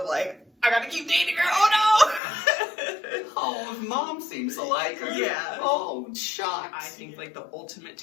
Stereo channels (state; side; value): drops out; right; at 2.2 s